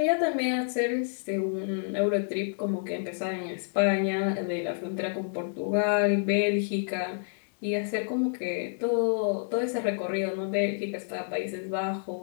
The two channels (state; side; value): silent; right; digital silence